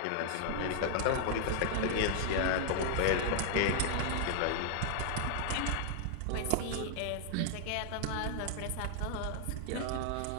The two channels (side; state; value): both; different; correlation 0.00